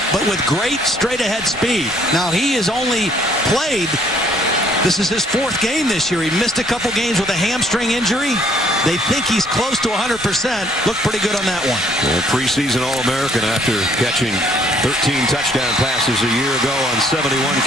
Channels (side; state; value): both; normal; correlation 0.63